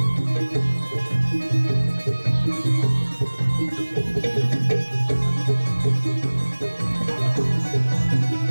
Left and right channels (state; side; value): inverted; both; correlation -1.00